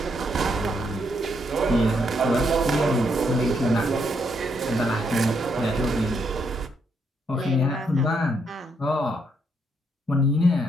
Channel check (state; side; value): normal; both; correlation 0.75